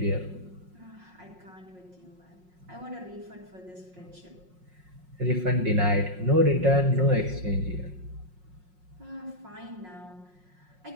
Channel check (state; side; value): late; left; 5.5 ms